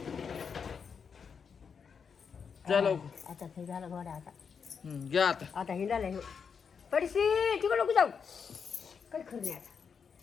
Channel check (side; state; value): right; quieter; 6.3 dB